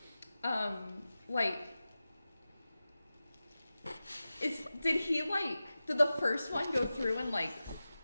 Did the first one go through and like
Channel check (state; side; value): inverted; both; correlation -0.95